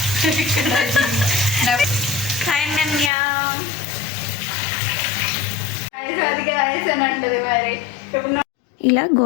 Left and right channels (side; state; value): right; drops out; at 3.1 s